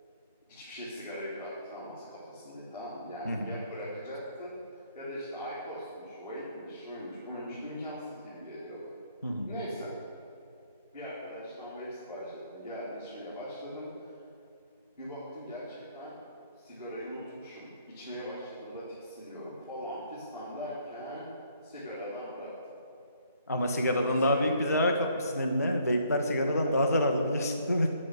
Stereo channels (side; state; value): both; inverted; correlation -0.66